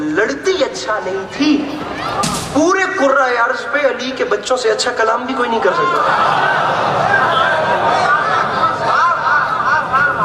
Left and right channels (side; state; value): both; identical; correlation 1.00